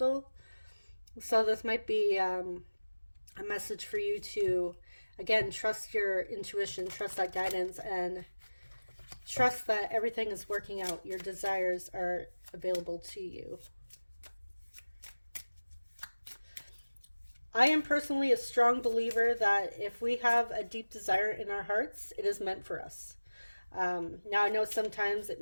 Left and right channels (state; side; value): inverted; both; correlation -1.00